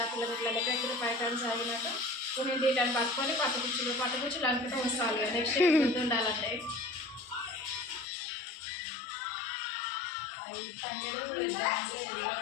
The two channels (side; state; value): right; drops out; at 8.1 s